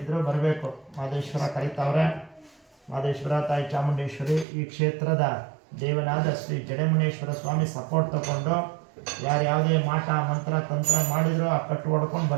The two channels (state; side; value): drops out; left; at 4.5 s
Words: ಬರಬೇಕು. ಮಾದೇಶ್ವರ ಕರೀತಾವ್ರೆ. ಮಾದೇಶ್ವರ, ತಾಯಿ ಚಾಮುಂಡೇಶ್ವರಿ, ಈ ಕ್ಷೇತ್ರದ ದೇವನಾದ ಶ್ರೀ ಜಡೆಮುನೇಶ್ವರ ಸ್ವಾಮಿ ಸಪೋರ್ಟ್ ತಗೊಂಡು ಯಾರು ಯಾವುದೇ ಮಾಟ ಮಂತ್ರ ತಂತ್ರ ಮಾಡಿದ್ರು ಆ ಕಟ್ಟು ಹೊಡ್ಕೊಂಡು